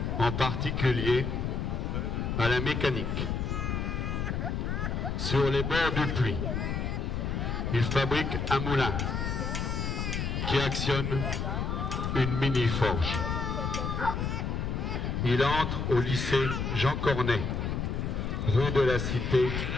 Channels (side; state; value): left; noise; rumble, 1 dB below the sound